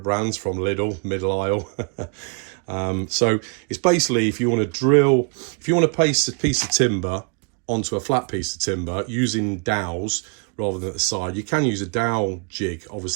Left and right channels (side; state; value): left; quieter; 35.9 dB